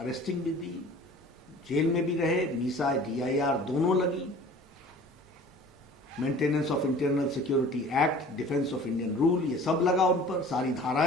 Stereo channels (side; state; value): both; normal; correlation 0.45